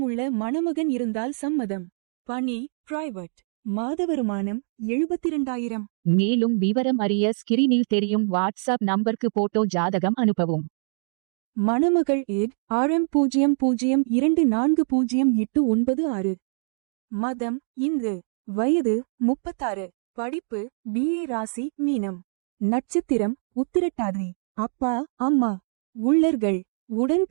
மணமகன் இருந்தால் சம்மதம். பணி பிரைவேட். மாத வருமானம் 72,000. மேலும் விவரம் அறிய ஸ்கிரீனில் தெரியும் வாட்ஸ்அப் நம்பருக்கு போட்டோ ஜாதகம் அனுப்பவும். மணமகள் ஏட் RM00240896. மதம் இந்து. வயது 36. படிப்பு BA. ராசி மீனம். நட்சத்திரம் உத்திரட்டாதி. அப்பா அம்மா உள்ளர்கள். உடன்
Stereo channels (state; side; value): silent; left; digital silence